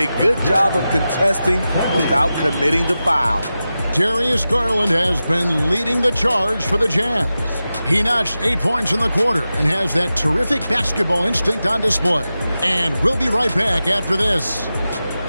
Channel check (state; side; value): inverted; both; correlation -0.93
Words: good job of contesting without committing the foul. Darius Garland has been leading the charge for the Jazz. He notched 8 points in the quarter and has that terrific basketball instinct on display. And we'll be right back after this.